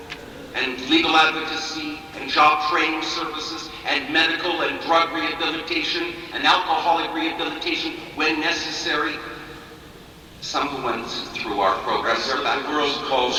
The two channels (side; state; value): both; identical; correlation 1.00